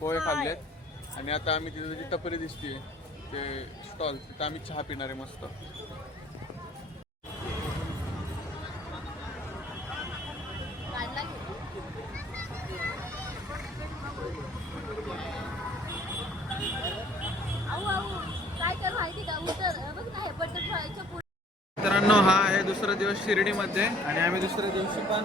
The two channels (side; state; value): both; normal; correlation 0.56